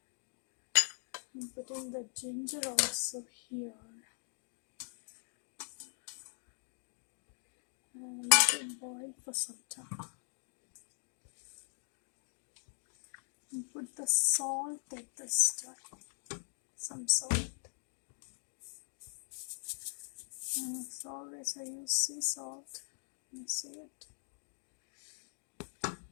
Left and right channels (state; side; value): silent; right; digital silence